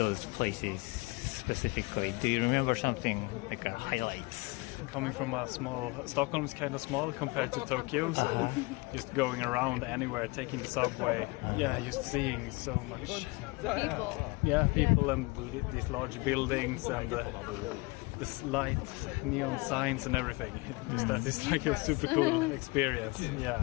places specifically? Do you remember something like highlights? Coming from a small, Stockholm is kind of small compared to Tokyo, so just going around anywhere, taking the subway, just seeing so much. People and these large buildings and this light, neon signs and everything. That is like a super cool experience. Yeah.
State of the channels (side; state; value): right; quieter; 25.6 dB